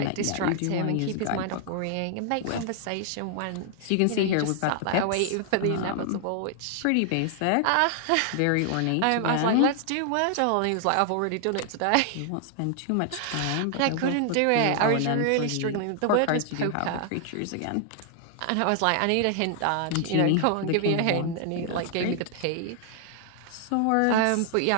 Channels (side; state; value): both; different; correlation 0.00